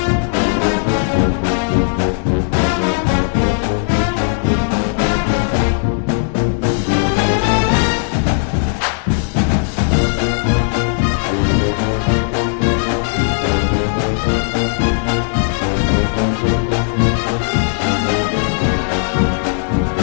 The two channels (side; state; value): right; silent; digital silence